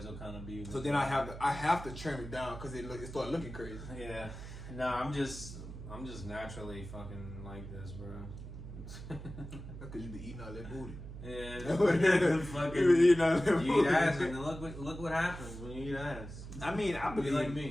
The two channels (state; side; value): noise; right; hum, 11 dB below the sound